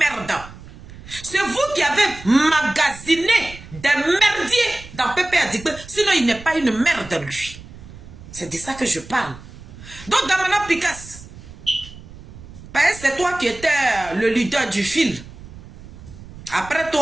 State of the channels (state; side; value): noise; right; rumble, 17 dB below the sound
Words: C'est vous qui avez magasiné des merdiers dans Pépé Adigbe. Sinon, il n'est pas une merde, lui. C'est de ça que je parle. Donc, Damana Picasso, c'est toi qui étais le leader du fil. Après